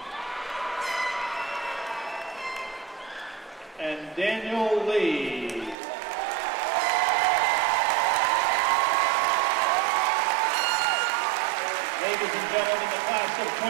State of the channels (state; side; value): drops out; left; at 5.8 s